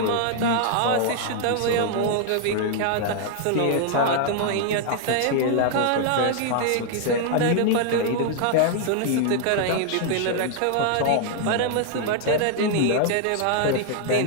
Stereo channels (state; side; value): different; both; correlation 0.00